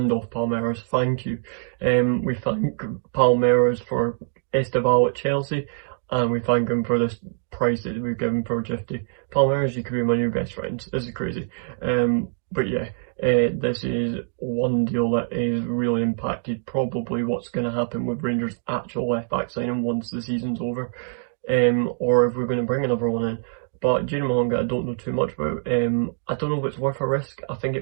off Palmeiras, thank you. We thank Palmeiras for Esteval at Chelsea, and we thank him for this price that we've given for Gifty. Palmeiras, you could be my new best friends. This is crazy. But yeah, this is one deal that is really impacted probably what's going to happen with Rangers' actual left back signing once the season's over, or if we're going to bring another one in. But Junior Mahonga, I don't know too much about. I don't know if it's worth a risk. I think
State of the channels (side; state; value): left; silent; digital silence